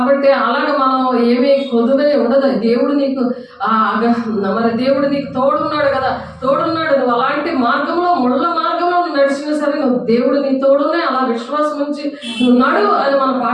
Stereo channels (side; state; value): both; identical; correlation 1.00